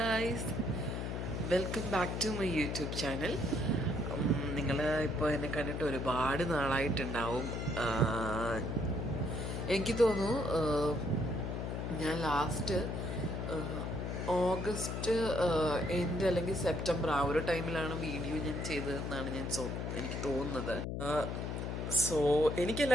welcome back to my YouTube channel. നിങ്ങൾ ഇപ്പോൾ എന്നെ കണ്ടിട്ട് ഒരുപാട് നാളായിട്ടുണ്ടാവും. എനിക്ക് തോന്നുന്നു ഞാൻ ലാസ്റ്റ് ഓഗസ്റ്റ് എൻഡ് അല്ലെങ്കിൽ സെപ്റ്റംബർ ആ ഒരു ടൈമിലാണ് വീഡിയോ ഞാൻ ചെയ്തതെന്നാണ് എനിക്ക് തോന്നുന്നത്. സോ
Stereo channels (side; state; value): left; noise; hum, 3 dB below the sound